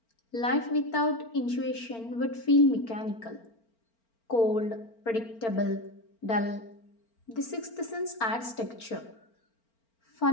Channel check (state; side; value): late; right; 4.4 ms